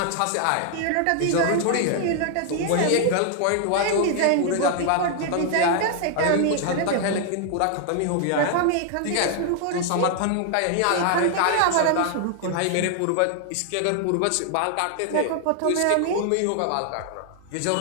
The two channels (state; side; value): different; both; correlation 0.00